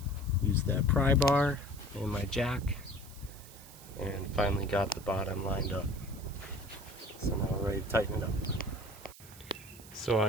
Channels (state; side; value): noise; right; hiss, 19 dB below the sound